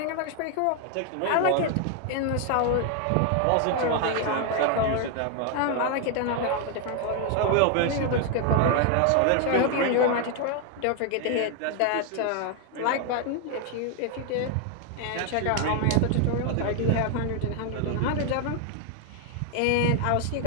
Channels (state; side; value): different; both; correlation 0.01